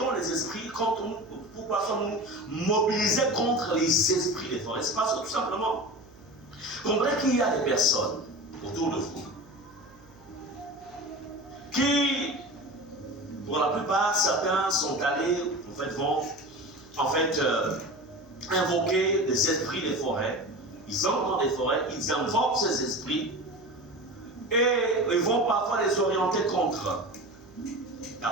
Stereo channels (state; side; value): noise; right; hum, 27 dB below the sound